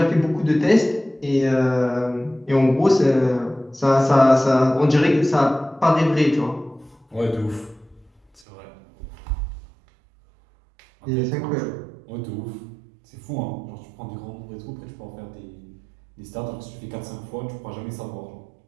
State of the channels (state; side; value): drops out; left; at 8.4 s